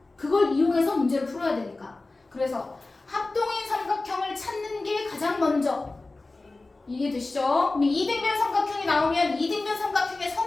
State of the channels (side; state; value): right; quieter; 3.3 dB